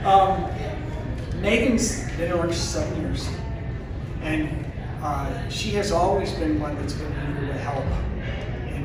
Megan's been in orchestra 7 years, and she has always been one that's been eager to help in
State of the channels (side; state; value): both; identical; correlation 1.00